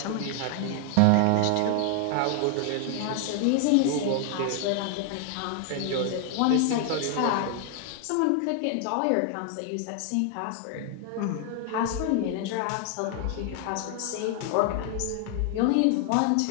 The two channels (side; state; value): both; different; correlation 0.00